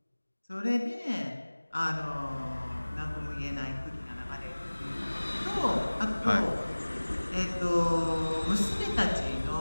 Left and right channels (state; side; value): inverted; both; correlation -1.00